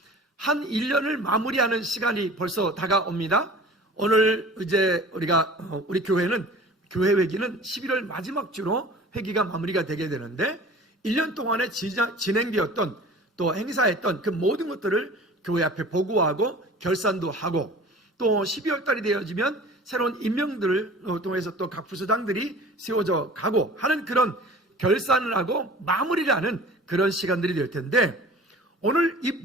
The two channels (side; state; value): both; normal; correlation 0.43